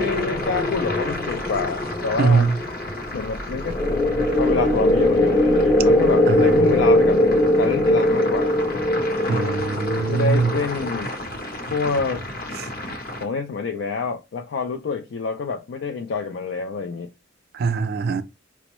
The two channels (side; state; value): both; normal; correlation 0.51